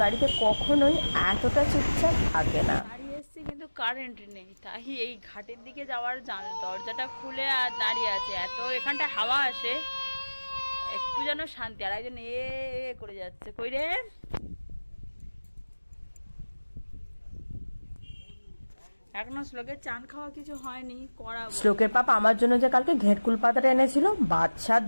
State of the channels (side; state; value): both; inverted; correlation -1.00